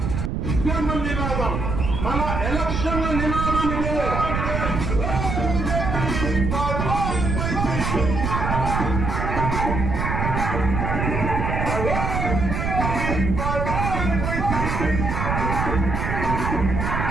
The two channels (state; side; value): noise; right; rumble, 1 dB below the sound